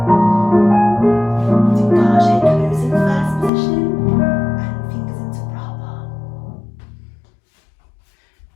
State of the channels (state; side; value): drops out; right; at 3.5 s